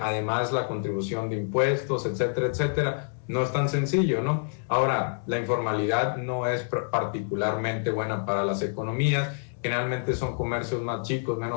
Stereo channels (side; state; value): right; silent; digital silence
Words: además la contribución de impuestos, etcétera, etcétera. No es tan sencillo, ¿no? Ahora, la informalidad no es particularmente buena para las economías. Generalmente son comercios más chicos,